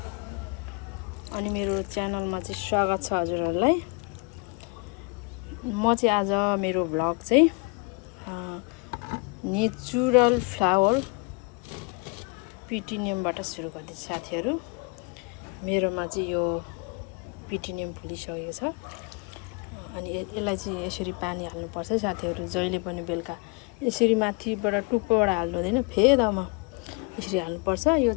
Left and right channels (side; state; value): right; quieter; 31.9 dB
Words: अनि मेरो च्यानलमा चाहिँ स्वागत छ हजुरहरुलाई। म चाहिँ आज मेरो भ्लग चाहिँ नेचुरल फ्लावर पिटिनियमबाट सुरु गर्दैछु साथीहरु। मेरोमा चाहिँ यो पिटिनियम फुलिसकेको छ। अनि यसलाई चाहिँ यसरी पानी हाल्नुपर्छ साथीहरु। जहिले पनि बेलुका यसरी माथिबाट टुप्पोबाट हाल्नु हुँदैन, फेदमा यसरी हाल्नुपर्छ। यो